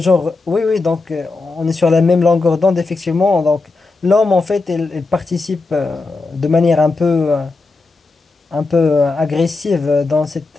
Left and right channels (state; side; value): quieter; right; 3.7 dB